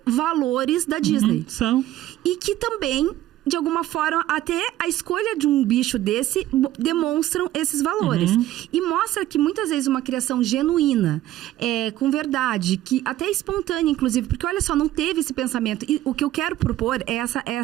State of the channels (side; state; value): left; quieter; 14.1 dB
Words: valores da Disney. São. E que também, de alguma forma, até a escolha de um bicho desse demonstram esses valores. E mostra que muitas vezes uma criação genuína, com verdade, que até espontânea, inclusive, porque olha só, não teve esse pensamento. E o que eu quero propor é